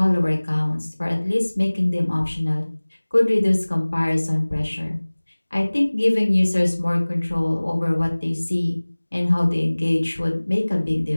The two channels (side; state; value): both; inverted; correlation -1.00